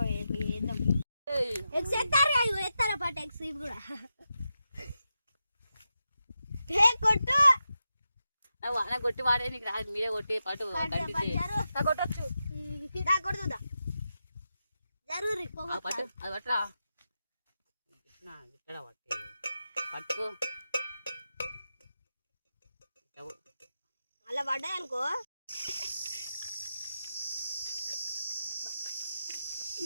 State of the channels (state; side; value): inverted; both; correlation -0.89